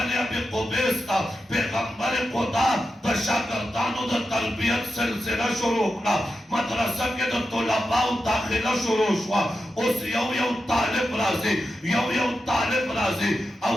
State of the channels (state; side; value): normal; both; correlation 0.90